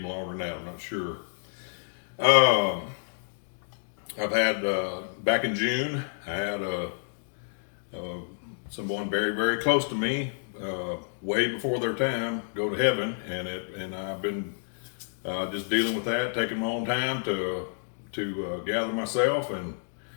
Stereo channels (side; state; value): right; silent; digital silence